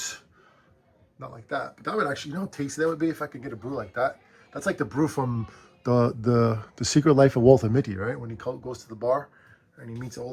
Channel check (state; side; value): identical; both; correlation 1.00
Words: Not like that, but that would actually, you know how tasty that would be if I could get a brew like that. That's like the brew from the Secret Life of Walter Mitty, right? When he goes to the bar and he meets